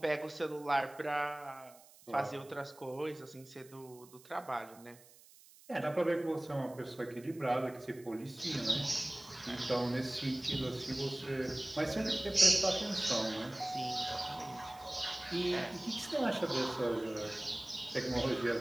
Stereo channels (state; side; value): noise; right; hiss, 23 dB below the sound